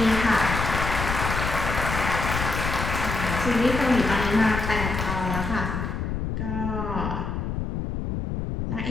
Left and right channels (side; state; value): left; noise; rumble, 3 dB below the sound